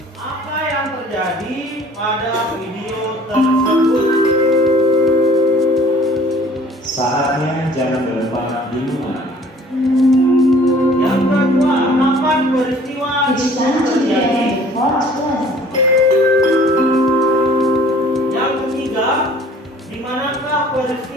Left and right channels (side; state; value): both; normal; correlation 0.52